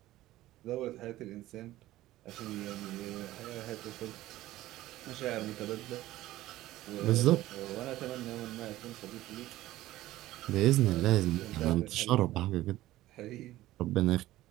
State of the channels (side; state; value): left; quieter; 15.9 dB